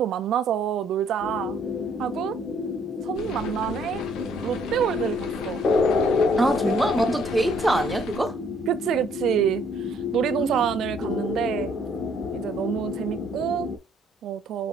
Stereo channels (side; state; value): both; normal; correlation 0.64